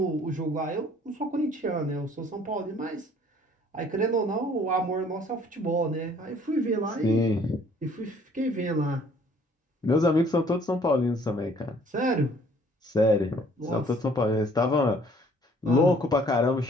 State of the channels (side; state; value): both; normal; correlation 0.58